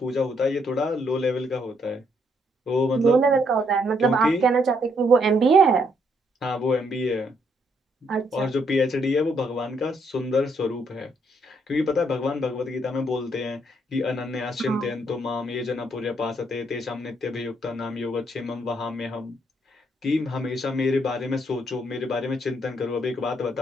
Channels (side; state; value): both; normal; correlation 0.72